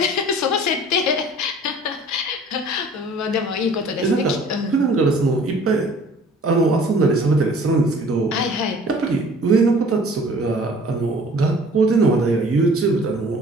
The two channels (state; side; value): normal; both; correlation 0.50